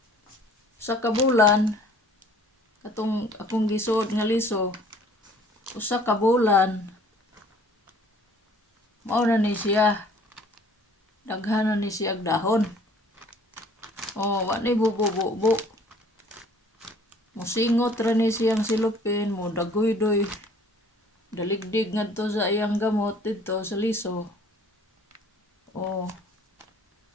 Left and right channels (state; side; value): normal; both; correlation 0.54